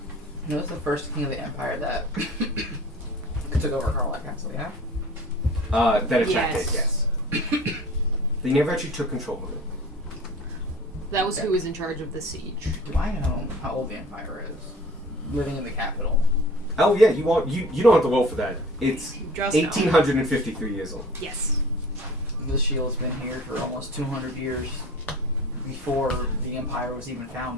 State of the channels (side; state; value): both; normal; correlation 0.44